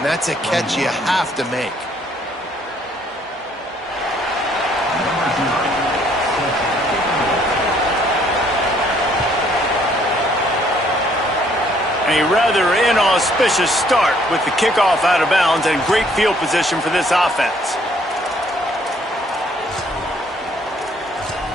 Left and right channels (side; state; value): both; normal; correlation 0.64